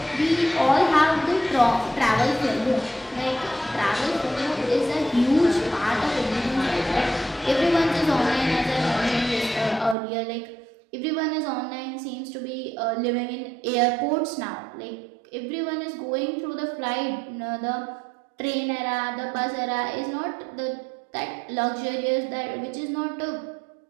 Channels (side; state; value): left; drops out; at 10.0 s